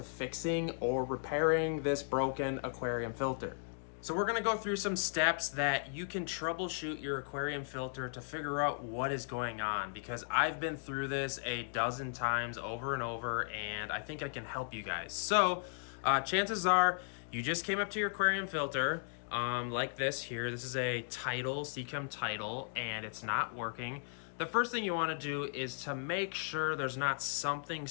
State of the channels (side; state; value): right; silent; digital silence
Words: fixing or repairing this broken aquarium filter. So we're gonna go through some steps that you can troubleshoot your aquarium filter to figure out what is going on, because I've been through this a dozen times over and over and I think I can help you guys. So chances are you just came up to your aquarium filter like this here. This is a Tidal, Seachem Tidal, and it's not working. The first thing you wanna do is to make sure there's not something